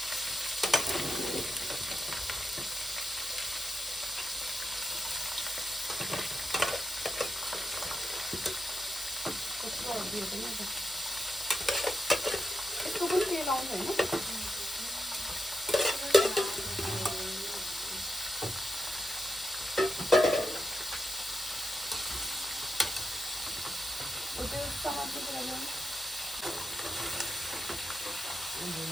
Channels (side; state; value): both; normal; correlation 0.85